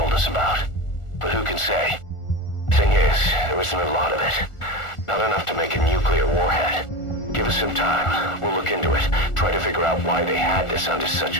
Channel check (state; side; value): late; right; 1.4 ms